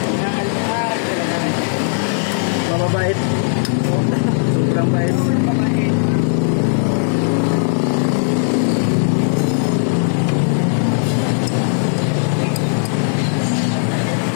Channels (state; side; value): silent; right; digital silence